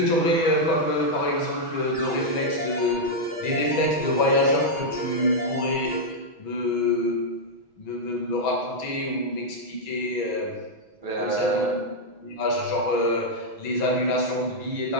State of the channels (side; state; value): right; late; 6.2 ms